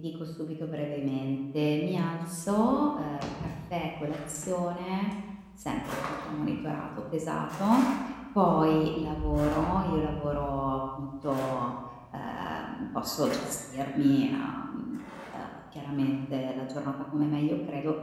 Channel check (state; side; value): identical; both; correlation 1.00